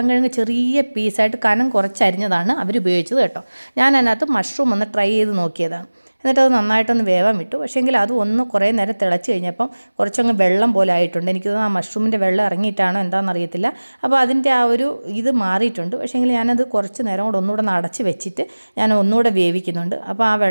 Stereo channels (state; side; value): inverted; both; correlation -1.00